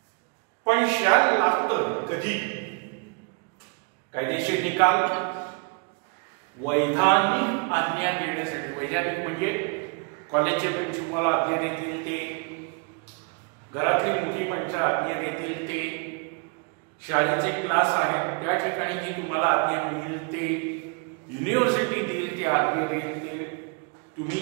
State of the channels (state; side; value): quieter; left; 35.3 dB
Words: पण शॅल लागतं कधी? कायदेशीर निकाल, वैधानिक आज्ञा देण्यासाठी, वैधानिक म्हणजे कॉलेजचे प्रिन्सिपल आज्ञा देतील ते, घरातली मोठी माणसं आज्ञा देतील ते, शाळेचे क्लास आहेत त्या ठिकाणी जी तुम्हाला आज्ञा मिळेल ते, युनिव्हर्सिटी देईल ते आज्ञा देईल ते, तुम्ही